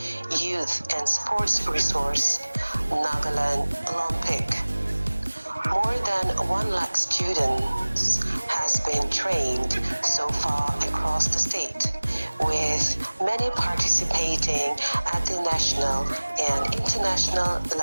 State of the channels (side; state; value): both; inverted; correlation -1.00